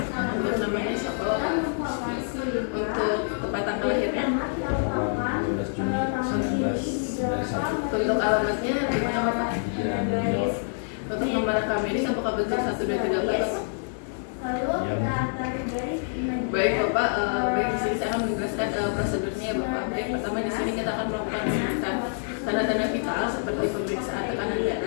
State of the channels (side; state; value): right; silent; digital silence